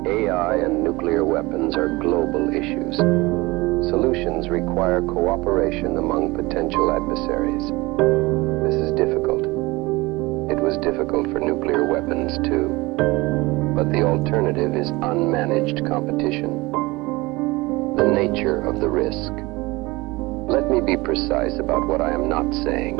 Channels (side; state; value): left; quieter; 22.4 dB